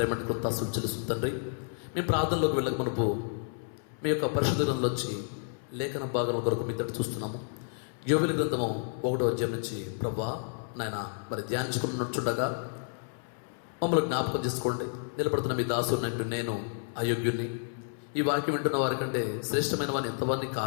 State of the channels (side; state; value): right; silent; 57 dB below the other